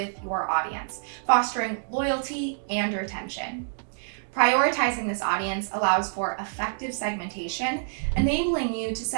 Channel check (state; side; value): silent; left; digital silence